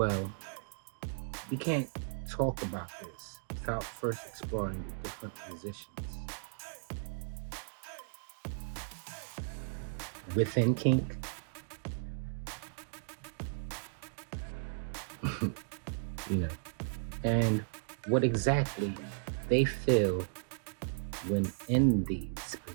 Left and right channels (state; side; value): silent; left; digital silence